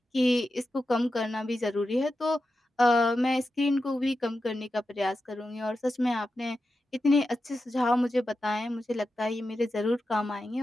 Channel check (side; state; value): both; normal; correlation 0.90